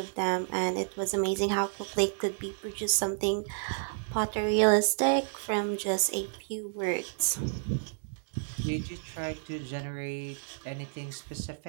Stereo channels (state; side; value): silent; left; digital silence